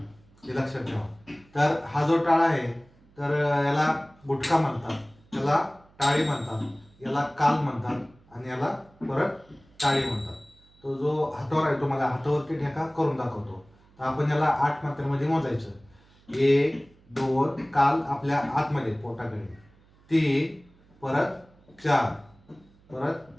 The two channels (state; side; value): noise; right; hum, 29 dB below the sound